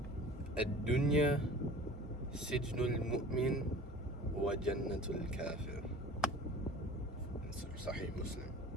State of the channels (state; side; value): normal; both; correlation 0.43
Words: "Ad-dunya sijnul mu'min wa jannatul kafir." It's Sahih Muslim.